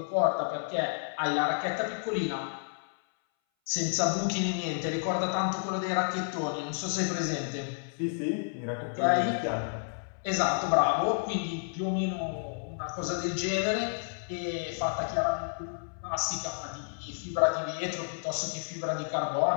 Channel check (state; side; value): silent; right; 57 dB below the other